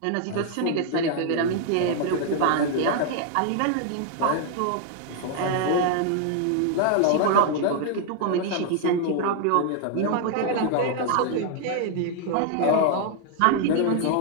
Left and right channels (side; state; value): both; different; correlation 0.00